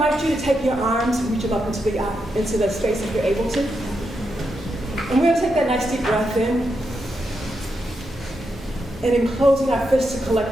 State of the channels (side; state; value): both; normal; correlation 0.84